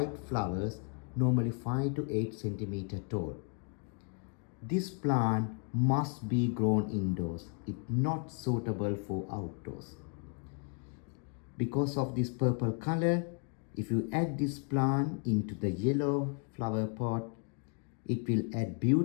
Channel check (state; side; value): quieter; right; 39.5 dB